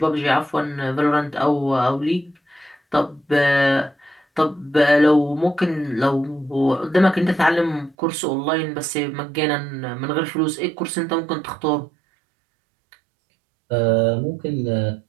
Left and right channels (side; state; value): left; drops out; at 8.0 s